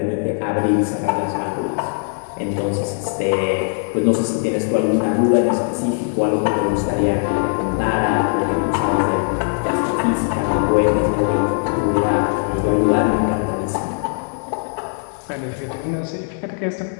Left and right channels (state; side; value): silent; right; 59 dB below the other